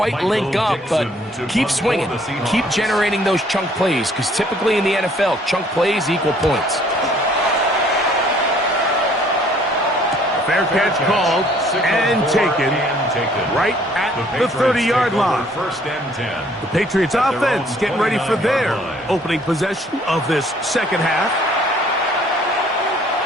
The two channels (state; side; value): normal; both; correlation 0.60